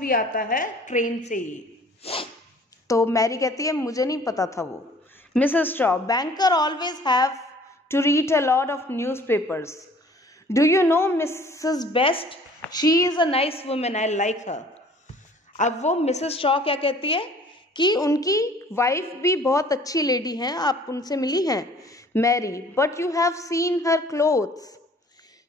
आता है ट्रेन से ही. तो मैरी कहती है मुझे नहीं पता था वो. Mrs. Shaw, banker always have to read a lot of newspapers. Do you know Mrs. Best? She is a nice woman. I like her. अब वो मिसेस शॉ क्या कहती है कि उनकी वाइफ भी बहुत अच्छी लेडी हैं, आप उनसे मिली हैं. Mary, but you have seen her clothes.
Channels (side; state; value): both; normal; correlation 0.52